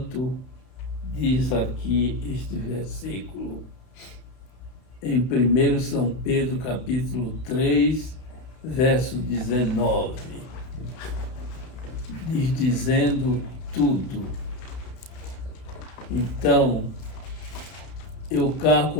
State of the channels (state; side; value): late; right; 32 ms